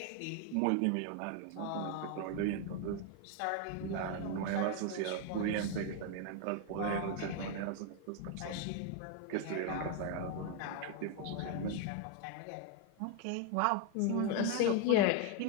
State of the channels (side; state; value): both; different; correlation 0.01